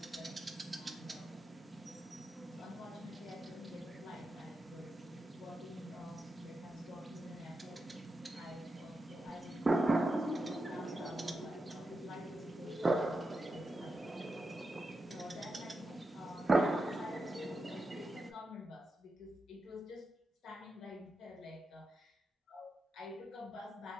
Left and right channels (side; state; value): both; normal; correlation 0.88